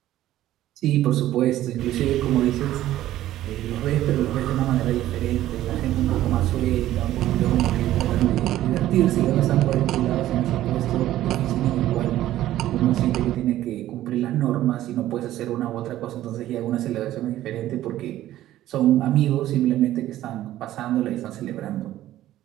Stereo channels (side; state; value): left; quieter; 13.8 dB